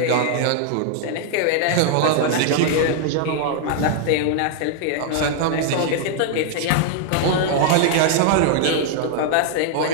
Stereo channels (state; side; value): different; both; correlation -0.01